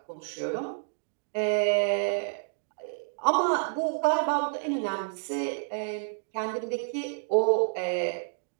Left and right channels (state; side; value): silent; left; digital silence